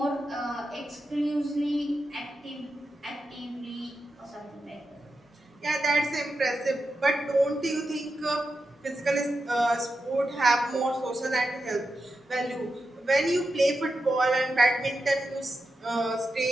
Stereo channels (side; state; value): both; normal; correlation 0.89